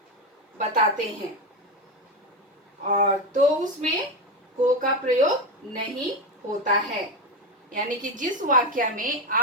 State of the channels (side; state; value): both; normal; correlation 0.14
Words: बताते हैं, और तो उसमें को का प्रयोग नहीं होता है। यानी कि जिस वाक्य में